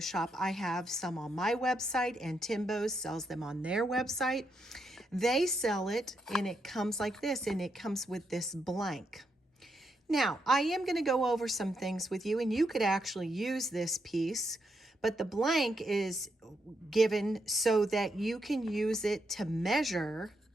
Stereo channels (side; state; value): both; normal; correlation 0.81